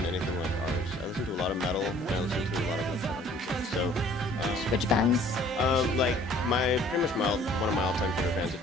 anything like ours. I listen to a lot of metal, and I listen to a lot of electronic music. So, which bands? Pretty much one of my all-time favorite bands,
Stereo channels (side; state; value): both; normal; correlation 0.54